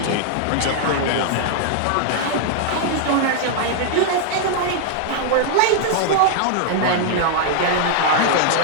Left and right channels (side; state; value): both; different; correlation -0.01